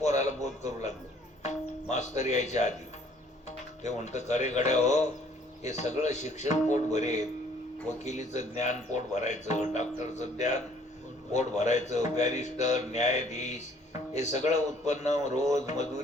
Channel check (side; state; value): both; normal; correlation 0.59